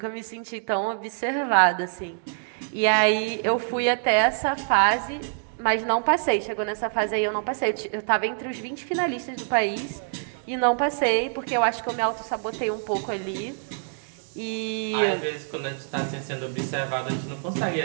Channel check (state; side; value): silent; left; digital silence